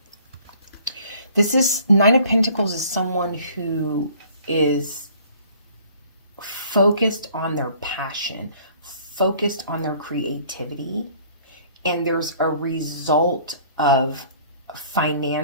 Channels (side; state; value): both; inverted; correlation -0.54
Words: Nine of Pentacles is someone who is focused on their passion, focused on their creativity, and there's a result of